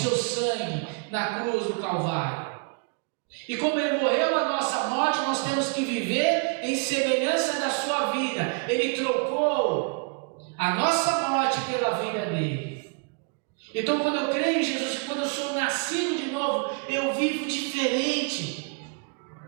sangue na cruz do Calvário. E como Ele morreu na nossa morte, nós temos que viver em semelhança da sua vida. Ele trocou a nossa morte pela vida dele. Então, quando eu creio em Jesus, quando eu sou nascido de novo, eu vivo diferente.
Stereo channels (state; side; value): quieter; left; 36.8 dB